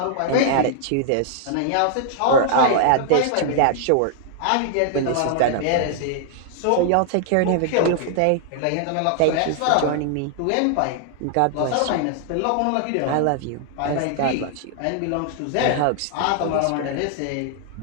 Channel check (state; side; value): different; both; correlation 0.00